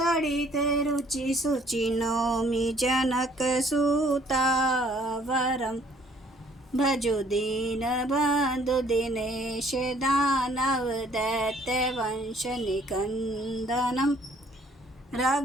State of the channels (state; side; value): normal; both; correlation 0.60